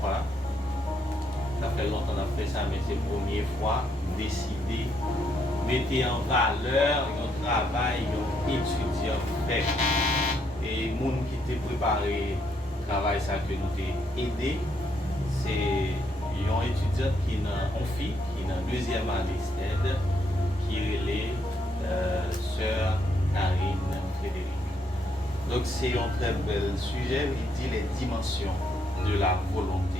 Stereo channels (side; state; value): both; normal; correlation 0.74